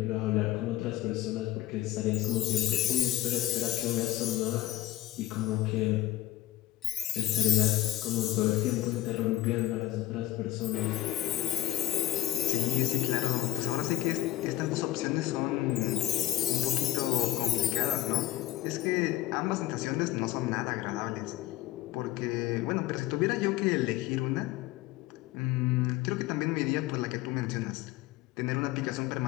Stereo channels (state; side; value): quieter; right; 15.4 dB